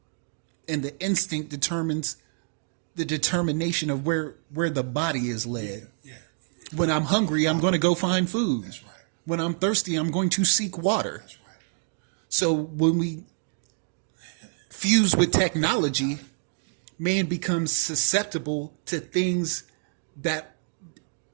and the instinct determines the determination of where the body is led. yeah. When I'm hungry, I'm going to go find food. That's right. When I'm thirsty, I'm going to seek water. That's right. So when we fuse with technology, man becomes susceptible to things that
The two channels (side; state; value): left; silent; 60 dB below the other